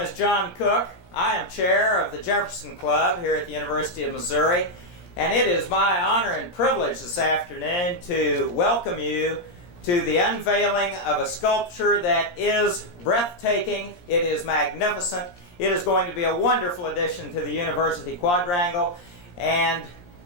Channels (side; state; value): right; late; 17 ms